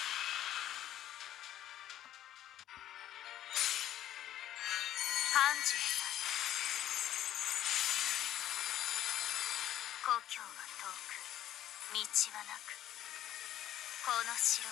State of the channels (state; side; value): quieter; right; 12.2 dB